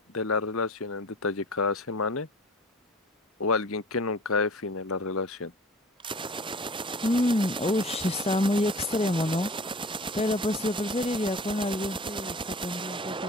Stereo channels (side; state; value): both; normal; correlation 0.42